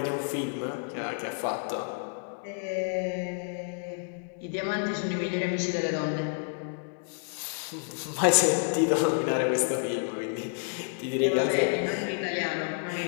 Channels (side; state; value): right; silent; 58 dB below the other